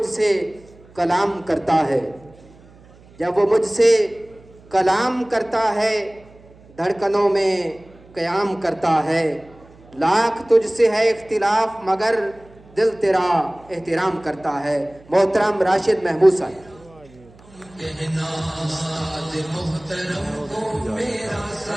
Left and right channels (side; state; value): right; noise; hum, 25 dB below the sound